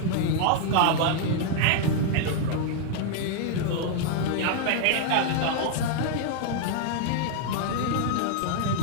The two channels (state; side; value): different; both; correlation -0.01